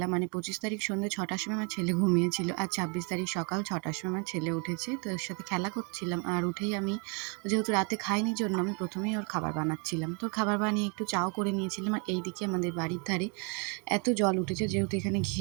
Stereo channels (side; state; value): left; quieter; 35.4 dB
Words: মানে ২৫ তারিখ সন্ধ্যে ৬টার সময় আমার ছেলে ঘুমিয়েছিল, আর ২৬ তারিখ সকাল ৬টার সময় আমার ছেলে উঠেছে। তো এর সাথে খেলা করছিলাম, আর উঠেই আমি যেহেতু রাতে খাইনি জন্য আমি প্রথমেই ওর খাবার বানাচ্ছিলাম। তো খাবার বানিয়ে একটু চাও করে নিয়েছিলাম। আর এইদিকে আমাদের বাড়ির ধারে এত জল উঠেছে, যেহেতু এখানে